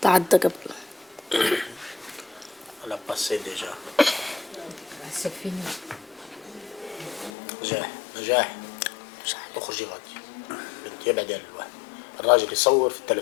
تعدى قبل. على باسي ديجا. C'est fini. نجاح نجاح. اخرجي غادي بنتي ابعدي عن الواحد الراجل يصور في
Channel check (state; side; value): drops out; right; at 7.3 s